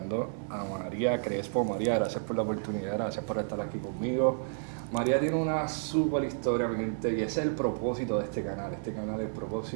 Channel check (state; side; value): silent; left; 57 dB below the other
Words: a María Crespo. María, gracias por la oportunidad, gracias por estar aquí conmigo. María tiene una súper historia, mi gente, y ese es el propósito de este canal. Este canal, el